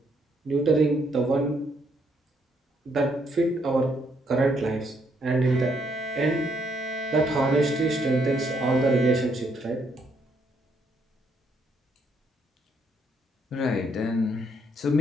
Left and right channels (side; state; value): both; normal; correlation 0.73